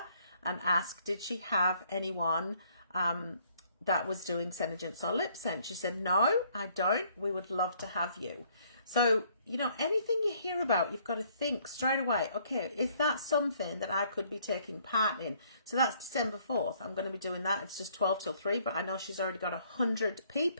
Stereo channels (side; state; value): both; inverted; correlation -0.64